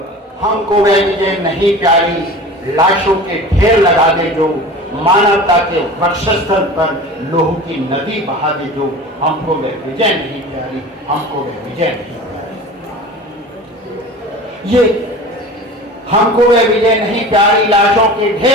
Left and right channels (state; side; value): normal; both; correlation 0.37